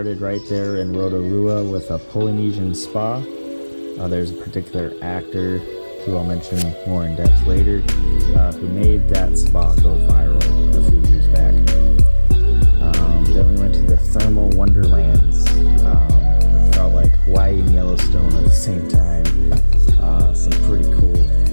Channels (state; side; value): inverted; both; correlation -1.00